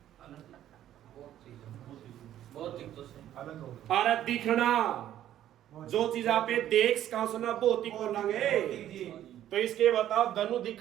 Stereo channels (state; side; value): quieter; left; 11.9 dB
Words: और दिखना, जो चीज आप देख सका सुना भौतिक बोलेंगे, तो इसके बताओ दोनों